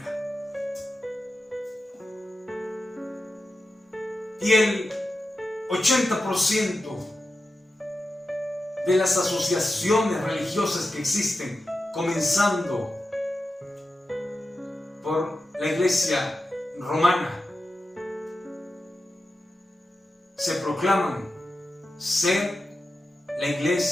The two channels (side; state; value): both; normal; correlation 0.91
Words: Y el 80% de las asociaciones religiosas que existen, comenzando por la iglesia romana, se proclaman ser la